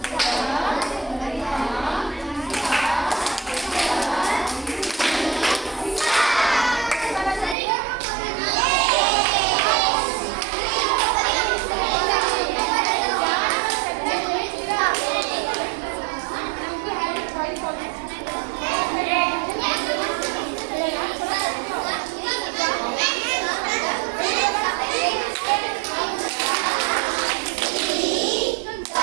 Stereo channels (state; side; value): drops out; left; at 7.6 s